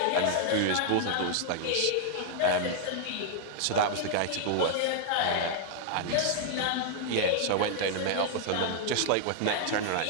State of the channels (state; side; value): different; both; correlation 0.00